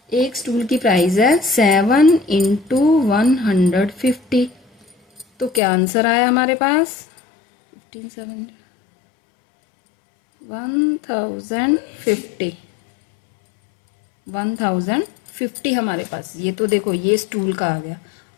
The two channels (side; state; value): right; drops out; at 5.6 s